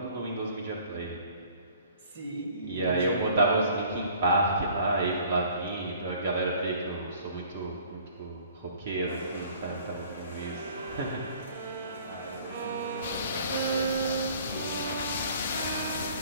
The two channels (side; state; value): both; inverted; correlation -0.54